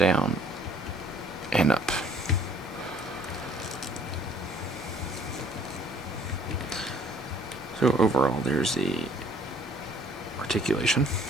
and up. So overall, there's the articulation.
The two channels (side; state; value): both; normal; correlation 0.58